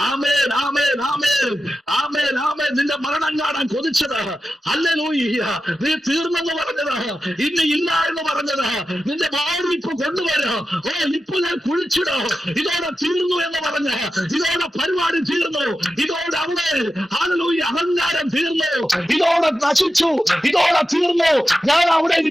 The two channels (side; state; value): both; normal; correlation 0.91